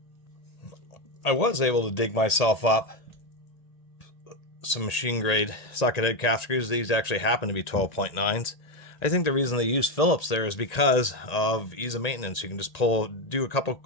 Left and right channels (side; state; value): right; late; 1.8 ms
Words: I was able to dig myself up some machine grade socket head cap screws. These actually happen to be 12.9s. I think the reason they use Phillips there is because of ease of maintenance. You can just do a couple